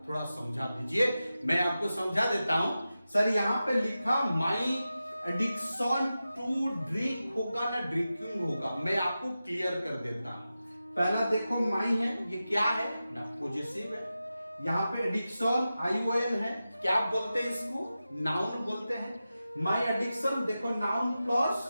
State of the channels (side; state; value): both; inverted; correlation -0.93